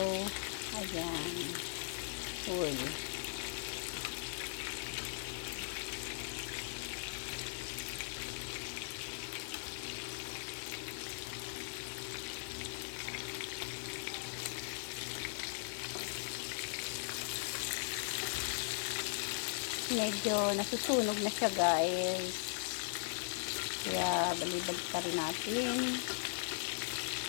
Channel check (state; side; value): silent; right; digital silence